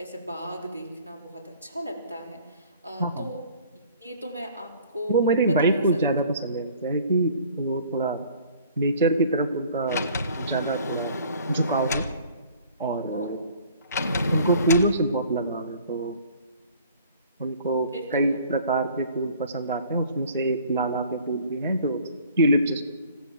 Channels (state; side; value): inverted; both; correlation -0.52